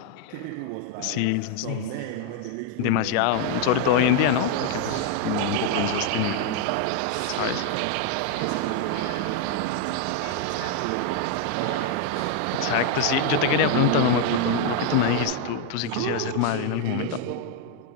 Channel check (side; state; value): both; different; correlation 0.01